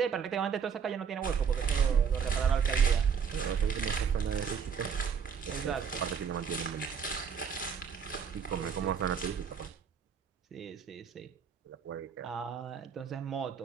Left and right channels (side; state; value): left; quieter; 6.8 dB